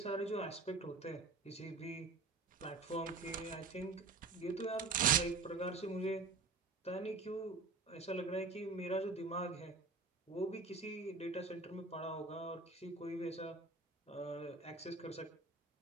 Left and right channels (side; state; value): left; quieter; 3.9 dB